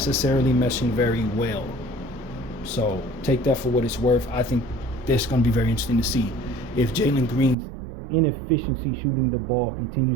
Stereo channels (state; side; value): drops out; left; at 7.6 s